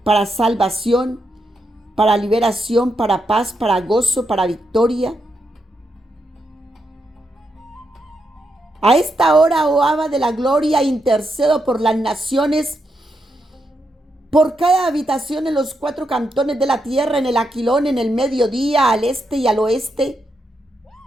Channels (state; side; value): normal; both; correlation 0.83